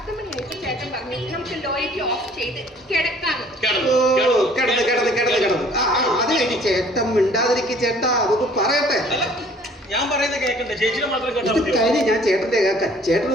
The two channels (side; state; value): both; normal; correlation 0.55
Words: മണിയായിട്ട് ചേട്ടൻ പറഞ്ഞു നമുക്ക് ലൈറ്റ് ഓഫ് ചെയ്ത് കിടക്കാന്ന്. കിടന്ന് അത് കഴിഞ്ഞ് ചേട്ടൻ മിണ്ടാതിരിക്കും. ചേട്ടാ അതൊക്കെ പറയട്ടെ. ഞാൻ പറയുന്നത് കേൾക്കട്ടെ, ചേച്ചിനെ മാത്രം കേട്ടാ മതിയോ? കഴിഞ്ഞ് ഞാൻ ചേട്ടന്റെ കേൾക്കാം.